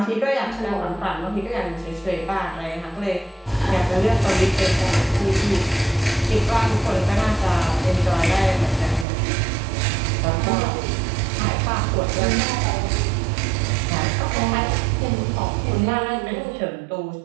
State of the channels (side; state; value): left; drops out; at 9.1 s